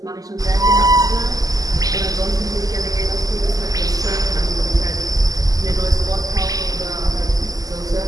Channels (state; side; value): late; left; 0.17 ms